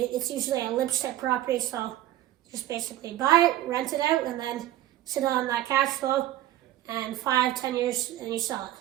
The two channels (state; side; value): quieter; left; 14.2 dB